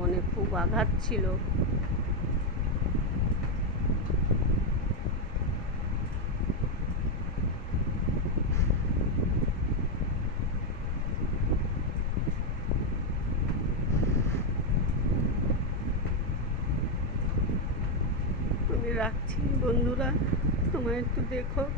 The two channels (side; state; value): both; normal; correlation 0.05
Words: খুব আঘাত ছিল। আমি রাখছি বন্ধুরা, তোমরা একটু দেখো,